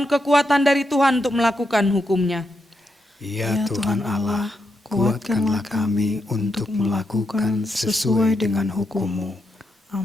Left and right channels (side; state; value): both; normal; correlation 0.83